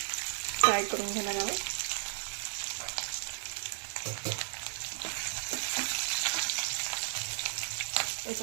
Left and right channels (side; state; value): left; silent; 55 dB below the other